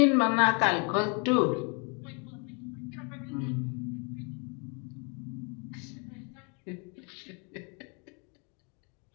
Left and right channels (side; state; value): right; quieter; 34.5 dB